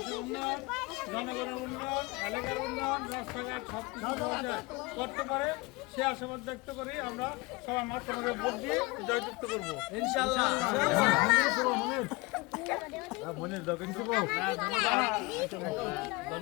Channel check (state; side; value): quieter; right; 24.7 dB